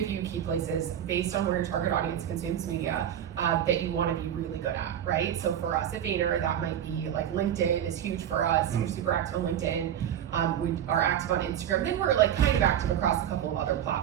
few key places based on where your target audience consumes media that you want to be really good at, right? So for us at Vayner, that might be like LinkedIn is huge for us. We're super active on LinkedIn. We are active on Instagram. Then we're like kind of active across a couple of other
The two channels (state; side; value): quieter; left; 10.1 dB